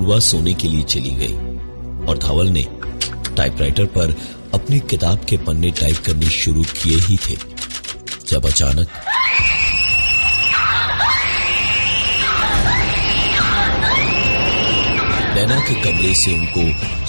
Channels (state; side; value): inverted; both; correlation -1.00